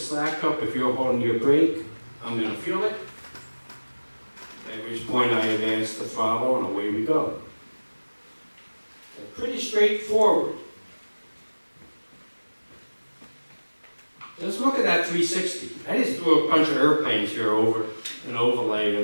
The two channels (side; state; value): both; inverted; correlation -1.00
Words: up. If you're holding your brake, I'm going to feel it. At which point I advance the throttle and away we go. So pretty straightforward. Let's look at that 360. I just threw a bunch of airplanes here over an overlay